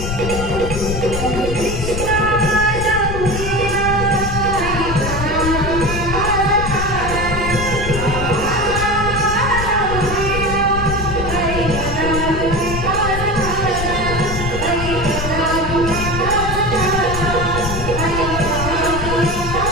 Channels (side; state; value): left; noise; rumble, 5 dB below the sound